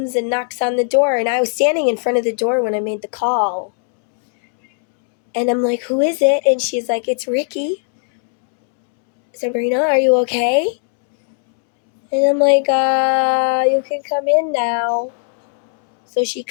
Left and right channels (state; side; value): silent; right; 68 dB below the other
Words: and knocks on the door, and I was standing in front of the door when I made the call. And I'm like, who is it? And she's like, it's Ricky. Sabrina, are you okay? And I'm like, you can come in now. So she